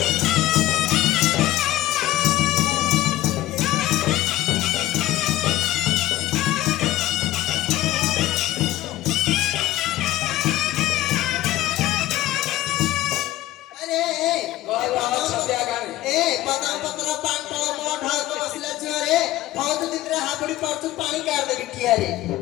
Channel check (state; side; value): quieter; right; 15.3 dB